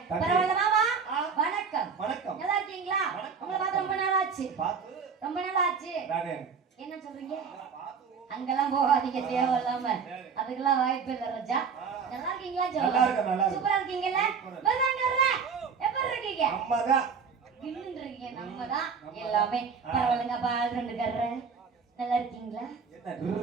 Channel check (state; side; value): quieter; left; 5.9 dB